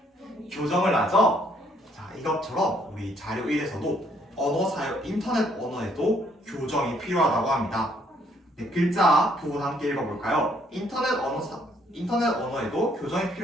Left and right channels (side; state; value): both; normal; correlation 0.67